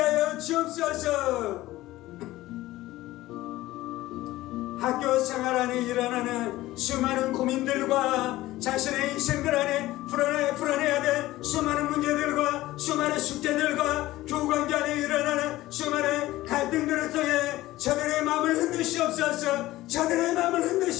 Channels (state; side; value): quieter; right; 16.9 dB